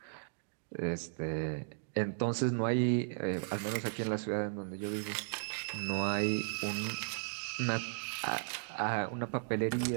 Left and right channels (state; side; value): silent; left; digital silence